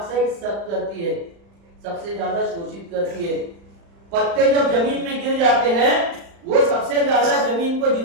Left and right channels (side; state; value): left; late; 35 ms